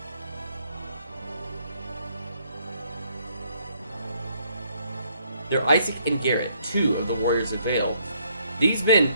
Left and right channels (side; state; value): both; inverted; correlation -0.68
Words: They're Isaac and Garrett, 2 of the Warriors of Vale. These men,